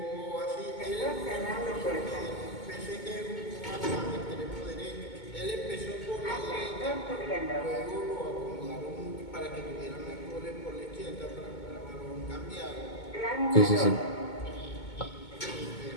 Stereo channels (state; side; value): late; right; 2.2 ms